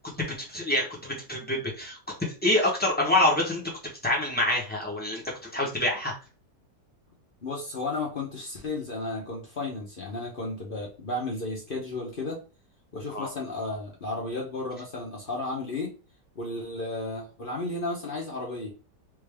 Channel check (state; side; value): normal; both; correlation 0.04